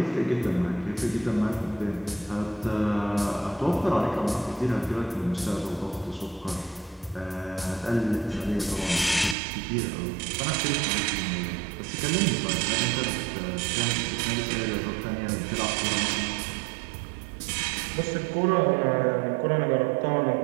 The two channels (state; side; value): drops out; left; at 9.3 s